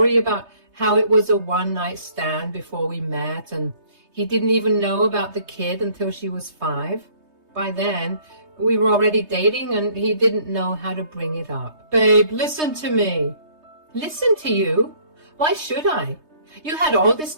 about how it was a one-night stand before we met, and he didn't even know about the kid until she was 5. By then, we were already dating, and he didn't know how to bring it up. Babe, listen to me. Listen to you? Why should I? You had all this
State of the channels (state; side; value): late; left; 3.2 ms